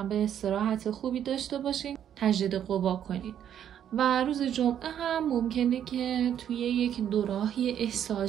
استراحت خوبی داشته باشین، تجدید قوا کنید. و روز جمعه هم ممکنه که توی یک دوراهی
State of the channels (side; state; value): left; quieter; 9.7 dB